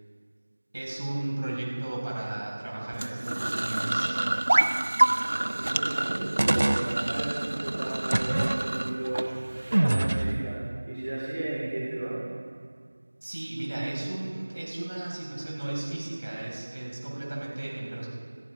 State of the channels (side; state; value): both; inverted; correlation -1.00